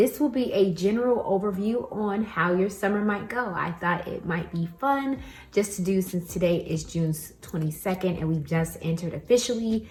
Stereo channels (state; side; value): identical; both; correlation 1.00